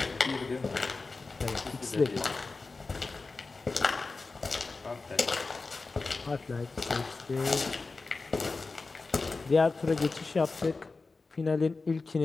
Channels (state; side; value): quieter; right; 3.9 dB